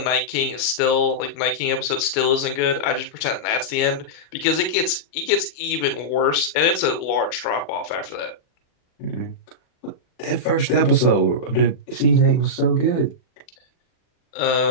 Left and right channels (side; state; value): right; late; 40 ms